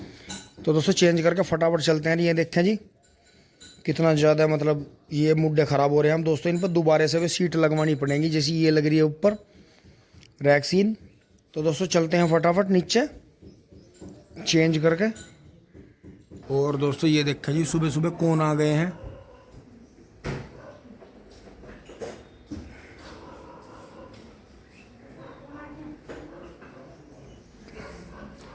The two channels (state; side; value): identical; both; correlation 1.00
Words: तो दोस्तों चेंज करके फटाफट चलते हैं। ये देखें जी कितना ज़्यादा मतलब ये मुड्डे ख़राब हो रहे हैं हम दोस्तों। इन पर दोबारा से भी सीट लगवानी पड़ेगी, जैसी ये लग रही है ऊपर रैक्सीन। तो दोस्तों चलते हैं फटाफट नीचे चेंज करके। और दोस्तों ये देखें जी सुबह सुबह कौन आ गए हैं।